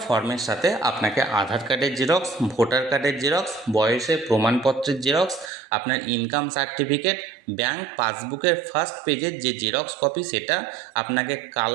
ফর্মের সাথে আপনাকে আধার কার্ডের জেরক্স, ভোটার কার্ডের জেরক্স, বয়সের প্রমাণপত্রের জেরক্স, আপনার ইনকাম সার্টিফিকেট, ব্যাংক পাসবুকের ফার্স্ট পেজের যে জেরক্স কপি সেটা, আপনাকে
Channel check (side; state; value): left; drops out; at 5.5 s